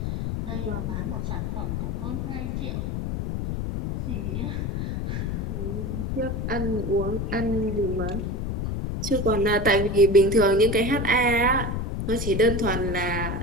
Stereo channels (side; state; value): left; noise; rumble, 2 dB below the sound